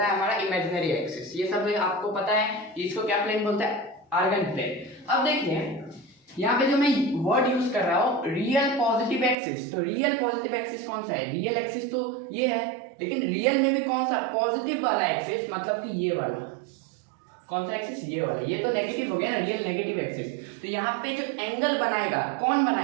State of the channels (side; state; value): left; drops out; at 9.3 s